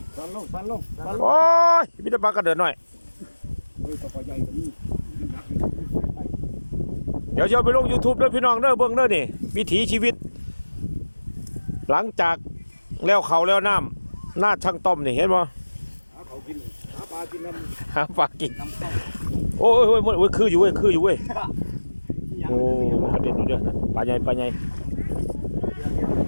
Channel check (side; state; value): both; inverted; correlation -1.00